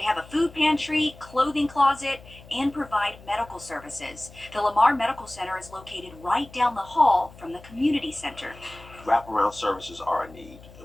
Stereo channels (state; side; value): noise; left; hum, 20 dB below the sound